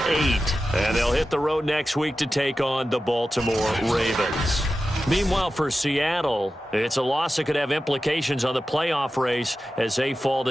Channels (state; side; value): normal; both; correlation 0.93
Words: And they'll hit the road next week to take on the Baltimore Ravens. Meanwhile, for Seattle, it's a loss that could have implications on the playoff race as they fall